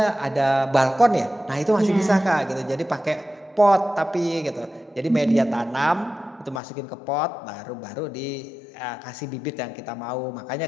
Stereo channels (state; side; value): drops out; right; at 6.6 s